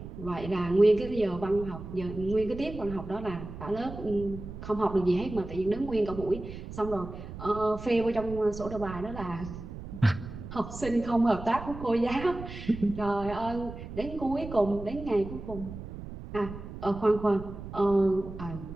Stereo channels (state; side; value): noise; right; rumble, 11 dB below the sound